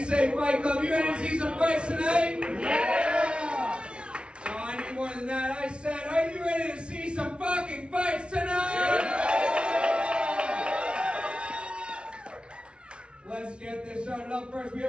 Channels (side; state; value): left; late; 0.058 ms